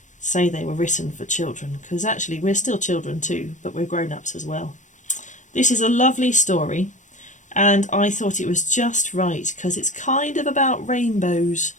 say they were written for children, because actually we're still children too, but we're grown-ups as well. This is a lovely story, and I thought it was just right because it's kind of about rainbows,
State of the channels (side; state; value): right; late; 0.36 ms